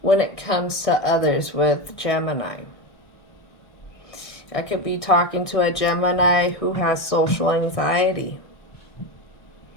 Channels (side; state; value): right; late; 1.6 ms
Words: when it comes to others with Gemini. I could be talking to a Gemini who has social anxiety.